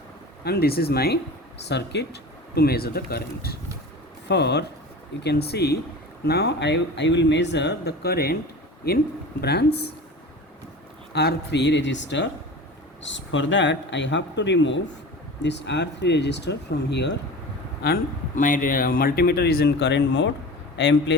and this is my circuit to measure the current. For you can see now I will measure the current in branch R3 resistor. For that I have to remove this R3 resistor from here, and my multimeter is in current mode. I am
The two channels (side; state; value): both; normal; correlation 0.35